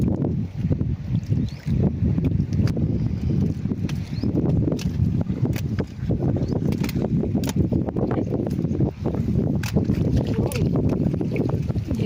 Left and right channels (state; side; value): identical; both; correlation 1.00